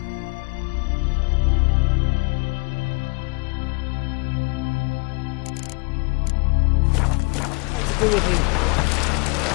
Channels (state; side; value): quieter; right; 31.8 dB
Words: What to do with him?